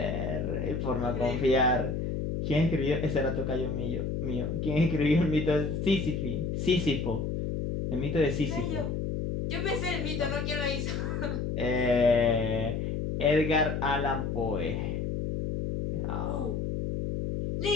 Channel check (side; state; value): left; noise; hum, 2 dB below the sound